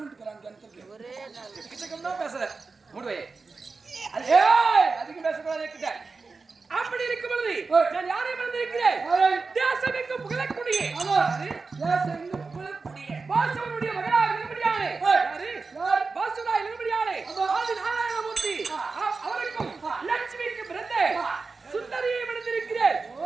கிணத்துக்கு. எக்கச்சக்கம் தான் பேசுற மூடுவே அதிகம் பேசக்கூடாது. அப்படி இருக்கும் பொழுது நான் யாரை மறந்திருக்கிறேன்? தேசமெங்கும் புகழக்கூடிய பாசுவனுடைய மகனாக இருந்தபடியானே பாசுவனாய் இருந்தபடியானே ஆதி நாராயணமூர்த்தி அவருக்கும் லட்சுமிக்கு பிறந்த சுந்தரியை மறந்திருக்கிறேன்.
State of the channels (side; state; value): left; quieter; 4.3 dB